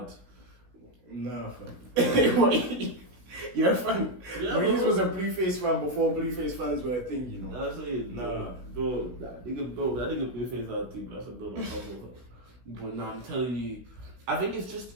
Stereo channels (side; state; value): left; late; 16 ms